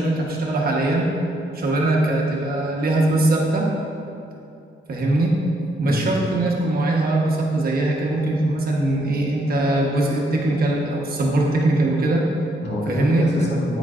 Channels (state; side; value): normal; both; correlation 0.74